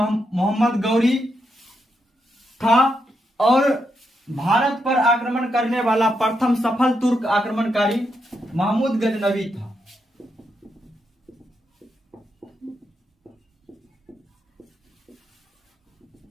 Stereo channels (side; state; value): both; normal; correlation 0.82